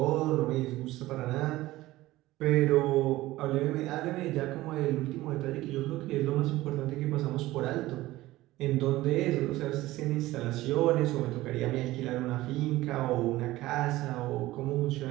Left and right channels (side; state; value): left; quieter; 17.3 dB